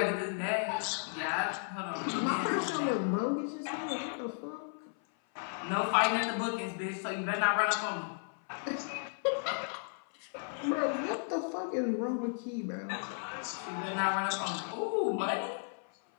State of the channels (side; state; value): right; silent; 55 dB below the other